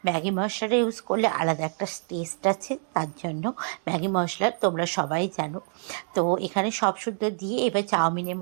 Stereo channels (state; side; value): silent; left; 60 dB below the other